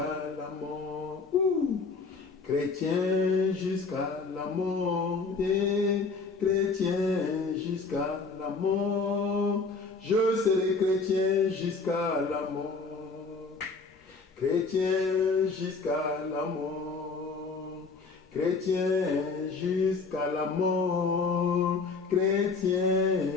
la mort. Chrétien jusqu'à la mort. Chrétien jusqu'à la mort. Je serai chrétien jusqu'à la mort. Chrétien jusqu'à la mort. Chrétien jusqu'à la mort.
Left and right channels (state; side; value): quieter; right; 4.3 dB